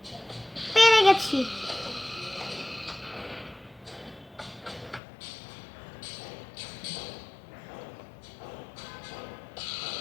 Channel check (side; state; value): right; drops out; at 5.0 s